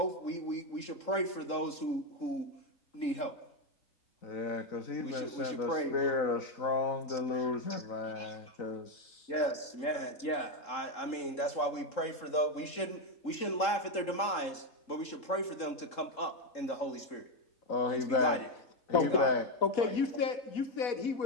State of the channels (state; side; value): late; right; 3.7 ms